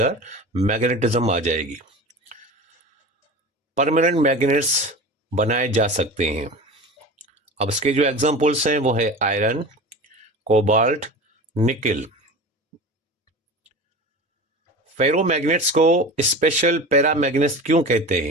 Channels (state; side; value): normal; both; correlation 0.33